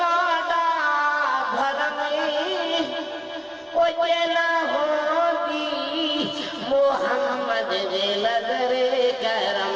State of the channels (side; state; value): both; identical; correlation 1.00